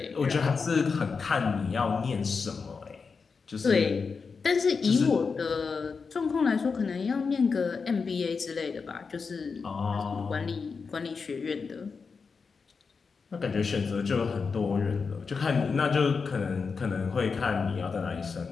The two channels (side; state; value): right; quieter; 5.1 dB